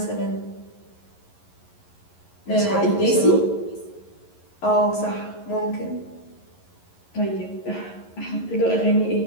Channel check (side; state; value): right; late; 11 ms